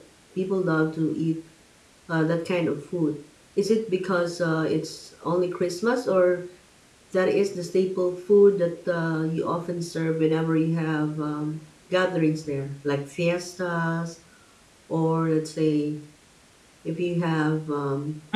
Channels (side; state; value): both; identical; correlation 1.00